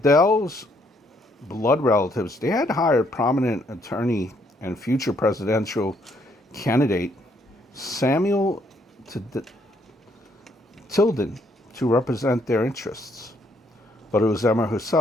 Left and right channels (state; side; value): normal; both; correlation 0.70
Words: blood relatives, they had hired prominent attorney and future presidential candidate Samuel Tilden to represent their interests. But it was Emma